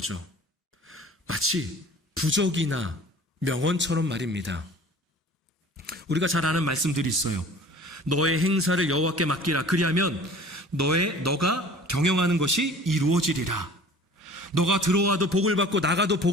마치 부적이나 명언처럼 말입니다. 우리가 잘 아는 말씀들이 있어요. 너의 행사를 여호와께 맡기라. 그리하면 너가 경영하는 것이 이루어지리라. 너가 들어와도 복을 받고 나가도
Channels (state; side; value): normal; both; correlation 0.45